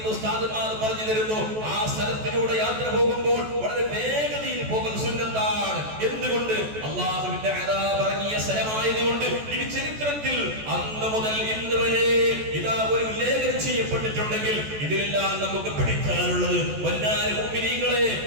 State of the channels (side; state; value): left; late; 14 ms